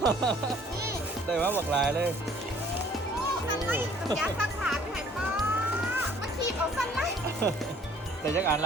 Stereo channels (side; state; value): both; normal; correlation 0.56